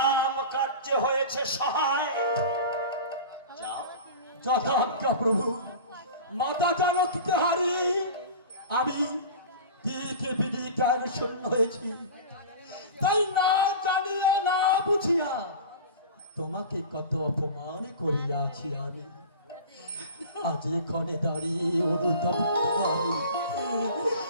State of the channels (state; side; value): inverted; both; correlation -0.35